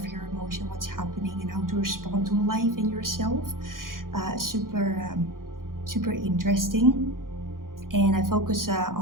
your emotion, what's happening, and how to respond to life and yourself. Super interesting. And I focus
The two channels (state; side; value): late; left; 0.91 ms